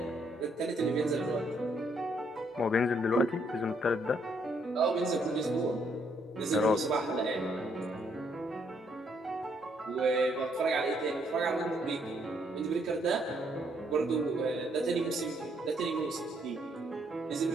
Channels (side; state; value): both; normal; correlation 0.71